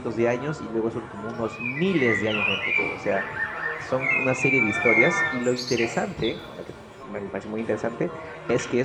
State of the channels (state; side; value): identical; both; correlation 1.00